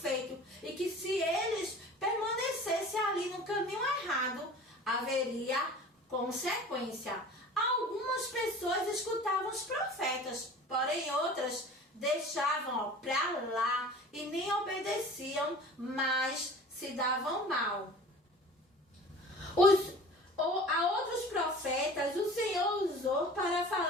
E que se eles permanecessem ali no caminho errado, haveria consequência. Algumas pessoas escutavam os profetas, porém outras deixavam para lá e nem obedeciam, mas se davam mal. A outros profetas o Senhor usou para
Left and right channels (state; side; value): normal; both; correlation 0.42